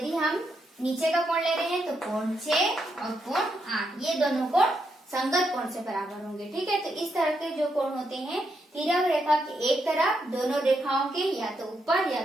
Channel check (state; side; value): normal; both; correlation 0.80